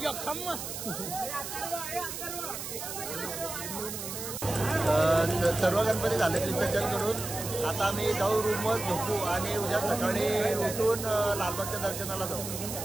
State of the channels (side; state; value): right; noise; hiss, 7 dB below the sound